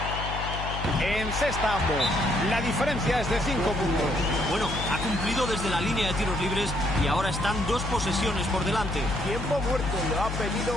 encesta ambos. La diferencia es de 5 puntos. Bueno, ha cumplido desde la línea de tiros libres y ahora están 2 posesiones por delante. Tiempo muerto, lo ha pedido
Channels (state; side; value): noise; left; hum, 6 dB below the sound